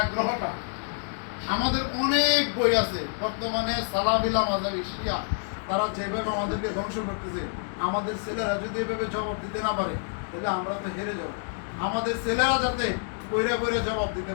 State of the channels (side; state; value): right; silent; digital silence